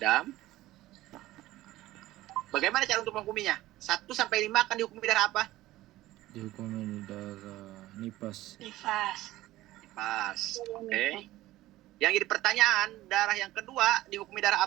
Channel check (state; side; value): quieter; left; 16.3 dB